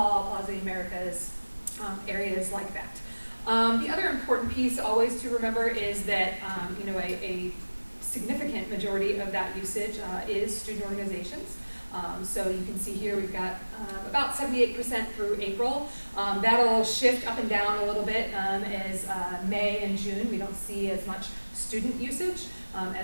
Plaza Americas, areas like that. The other important piece always to remember is that a significant majority of that usage is student organizations. So you can see here we've got about 78% through April. That'll shift up and down a little bit as May and June. We don't see as much student usage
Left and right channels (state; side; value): inverted; both; correlation -1.00